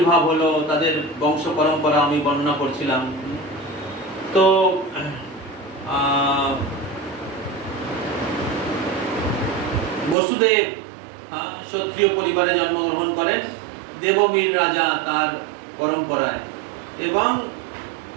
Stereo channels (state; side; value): drops out; left; at 10.2 s